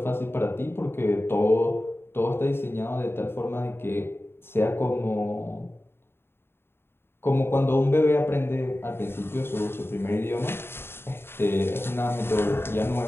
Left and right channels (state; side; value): late; right; 0.11 ms